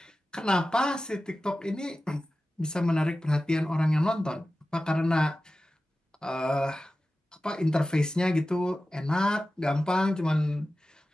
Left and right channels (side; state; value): both; normal; correlation 0.95